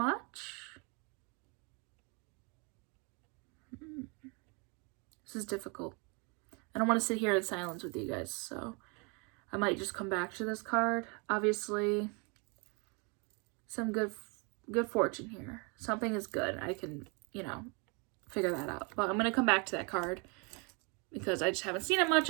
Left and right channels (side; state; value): left; quieter; 32.3 dB